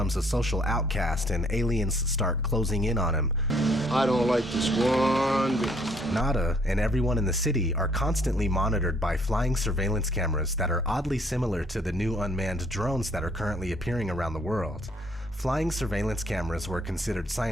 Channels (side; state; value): both; normal; correlation 0.64